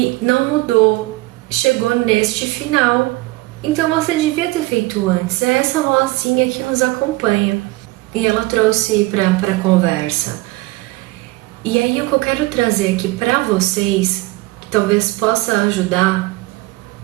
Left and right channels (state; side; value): quieter; left; 20.9 dB